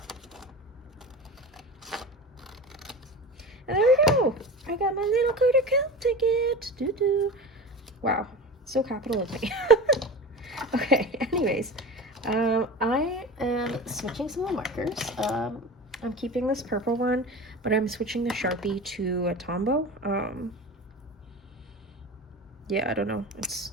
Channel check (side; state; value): both; normal; correlation 0.31